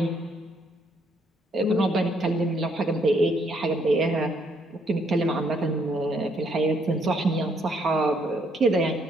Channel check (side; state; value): both; normal; correlation 0.71